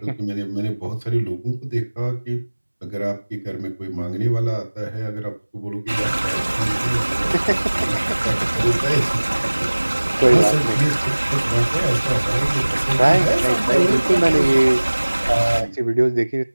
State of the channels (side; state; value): both; inverted; correlation -1.00